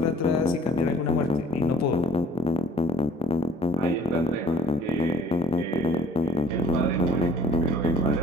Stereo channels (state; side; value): normal; both; correlation 0.55